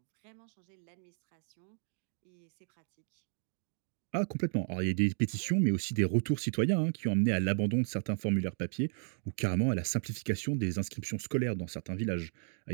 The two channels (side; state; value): left; silent; 55 dB below the other